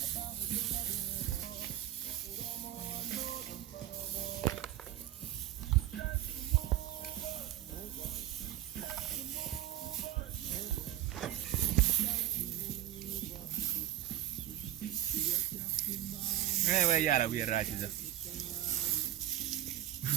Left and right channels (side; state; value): left; quieter; 13.0 dB